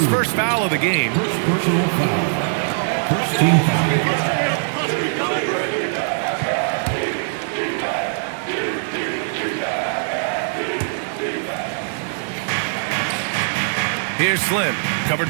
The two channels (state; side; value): silent; left; digital silence